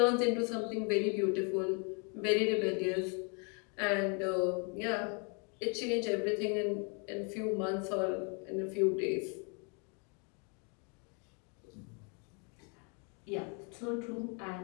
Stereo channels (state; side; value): quieter; right; 36.4 dB